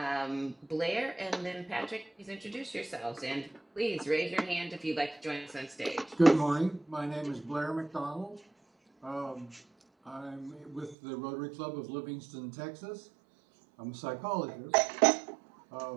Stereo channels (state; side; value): drops out; left; at 11.0 s